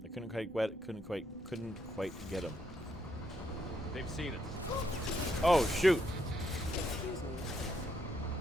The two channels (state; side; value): normal; both; correlation 0.76